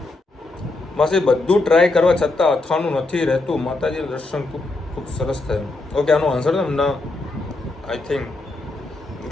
માસી બધું ટ્રાય કરવા છતાં અથાણું નથી રહેતું. માતાજીનું દર્શન ખૂબ સરસ થયું. ઓકે આનો આન્સર ના આઈ થિંક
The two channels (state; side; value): quieter; right; 3.1 dB